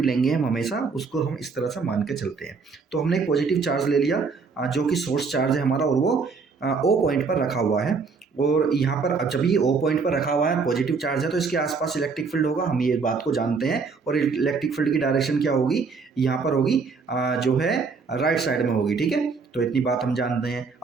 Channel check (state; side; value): quieter; left; 4.9 dB